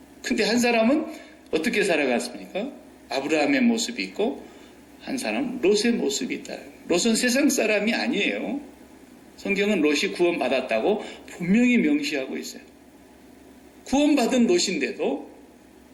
근데 한 사람은 어떻게 살아갔습니까? 아브라함의 모습이 있고 한 사람은 롯의 모습이 있다. 롯은 세상 사람이 아니에요. 성경은 롯이 구원받았다고 분명히 명시하고 있어요. 구원받은 롯인데도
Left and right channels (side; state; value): both; identical; correlation 1.00